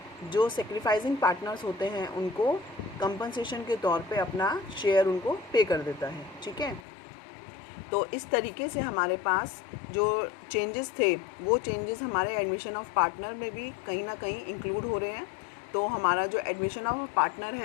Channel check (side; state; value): right; drops out; at 6.9 s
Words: जो सेक्रीफाइसिंग पार्टनर्स होते हैं उनको कंपनसेशन के तौर पे अपना शेयर उनको पे कर देता है। ठीक है, तो इस तरीके से हमारे पास जो चेंजेस थे वो चेंजेस हमारे एडमिशन ऑफ पार्टनर में भी कहीं ना कहीं इंक्लूड हो रहे हैं। तो हमारा जो एडमिशन ऑफ पार्टनर